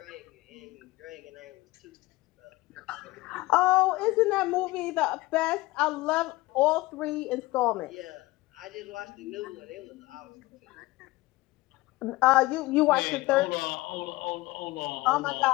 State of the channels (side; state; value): right; quieter; 19.9 dB